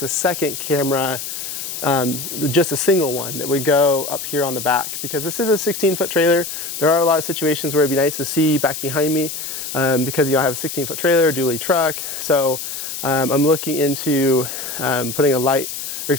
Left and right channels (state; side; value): noise; left; hiss, 7 dB below the sound